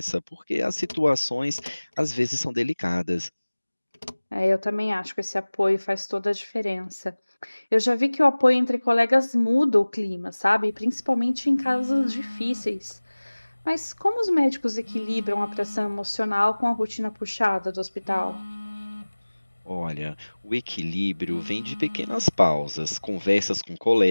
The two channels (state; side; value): inverted; both; correlation -1.00